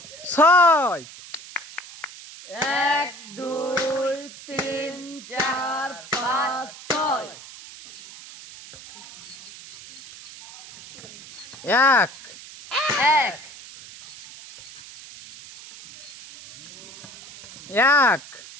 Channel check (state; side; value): noise; right; hiss, 16 dB below the sound